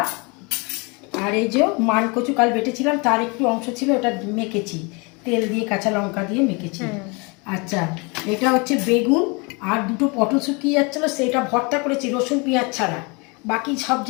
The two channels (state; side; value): quieter; right; 29.7 dB